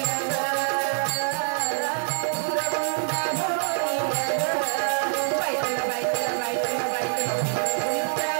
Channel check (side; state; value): left; silent; 58 dB below the other